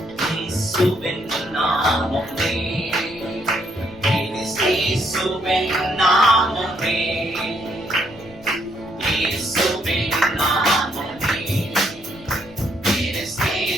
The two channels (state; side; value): noise; left; rumble, 21 dB below the sound